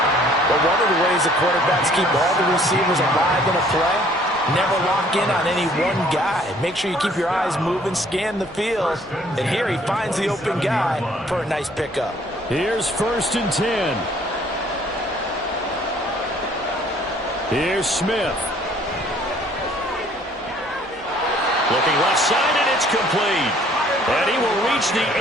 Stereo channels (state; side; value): normal; both; correlation 0.59